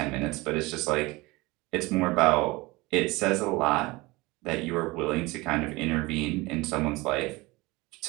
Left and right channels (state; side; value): quieter; left; 22.5 dB